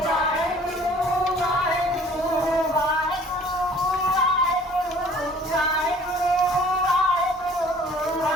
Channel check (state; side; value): normal; both; correlation 0.52